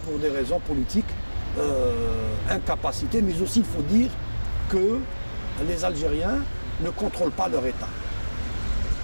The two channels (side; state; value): both; inverted; correlation -1.00